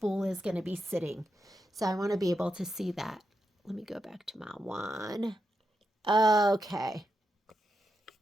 is going to be sitting. So I want to be able to see that. Let me go back to my one. Okay.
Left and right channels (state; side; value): normal; both; correlation 0.86